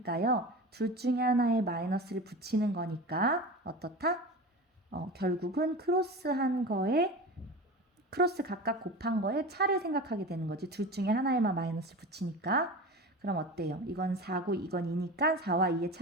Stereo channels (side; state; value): both; normal; correlation 0.30